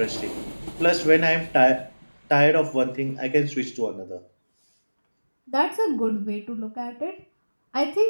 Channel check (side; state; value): both; inverted; correlation -1.00